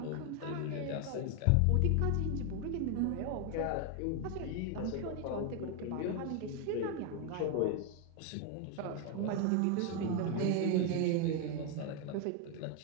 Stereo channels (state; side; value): different; both; correlation 0.01